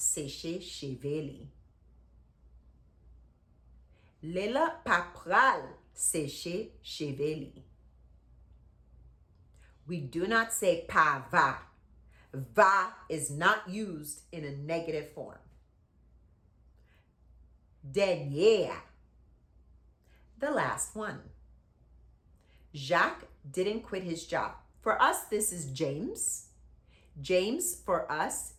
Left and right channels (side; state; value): both; identical; correlation 1.00